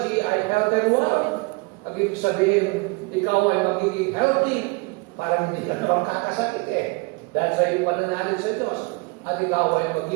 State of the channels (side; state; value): left; quieter; 27.6 dB